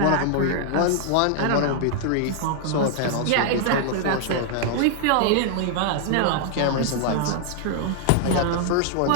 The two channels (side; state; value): both; different; correlation 0.00